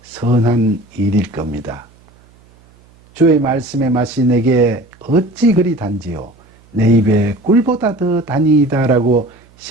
선한 일일 겁니다. 주의 말씀의 맛이 내게 어찌 그리 단지요 내 입에 꿀보다 더 단이다 라고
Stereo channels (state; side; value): noise; right; hum, 29 dB below the sound